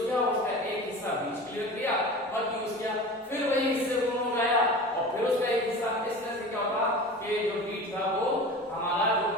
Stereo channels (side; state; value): both; normal; correlation 0.35